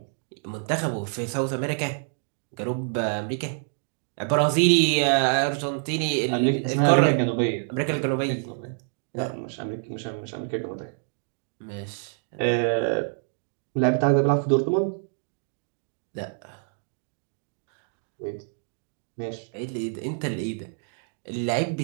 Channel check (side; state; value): left; silent; 60 dB below the other